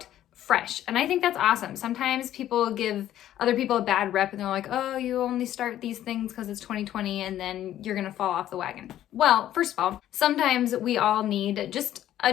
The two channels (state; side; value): quieter; right; 12.3 dB